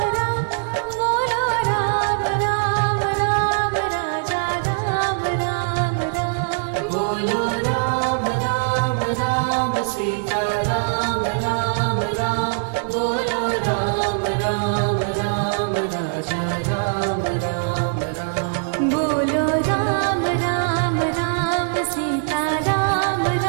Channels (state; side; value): silent; left; 61 dB below the other